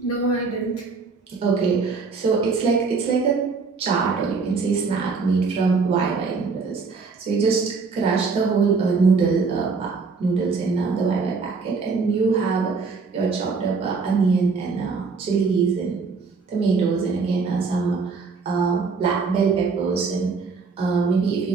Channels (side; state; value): left; quieter; 4.7 dB